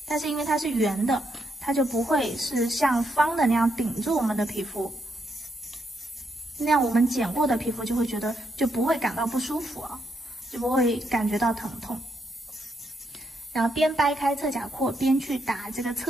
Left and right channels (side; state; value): both; normal; correlation 0.79